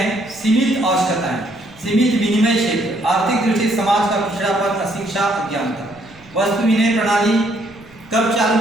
सीमित आवश्यकताएं, सीमित विनिमय क्षेत्र, आर्थिक दृष्टि से समाज का पिछड़ापन, अशिक्षा, अज्ञानता। वस्तु विनिमय प्रणाली कब चालू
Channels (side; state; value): right; noise; rumble, 26 dB below the sound